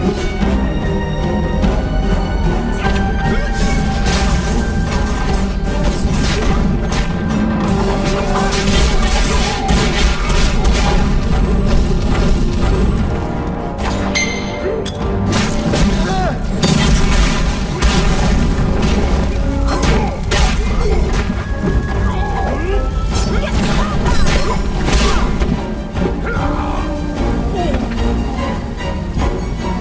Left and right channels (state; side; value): identical; both; correlation 1.00